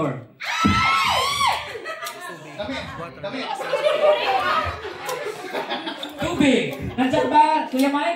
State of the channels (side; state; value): both; identical; correlation 1.00